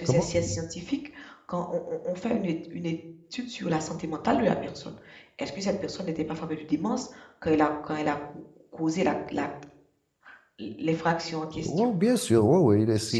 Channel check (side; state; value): both; identical; correlation 1.00